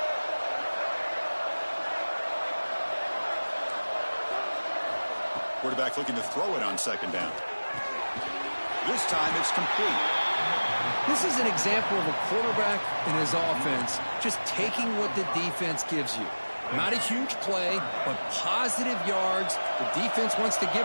Quarterback looking to throw it on second down. This time it's complete. This is an example of a quarterback and his offense just taking what the defense gives you. Not a huge play, but positive yards. The defense wants to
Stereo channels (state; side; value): inverted; both; correlation -1.00